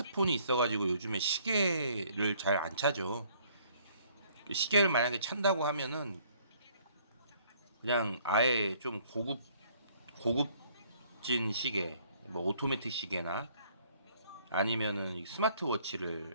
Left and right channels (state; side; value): inverted; both; correlation -0.62